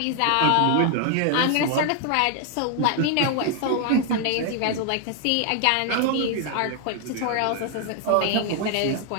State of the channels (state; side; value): different; both; correlation 0.00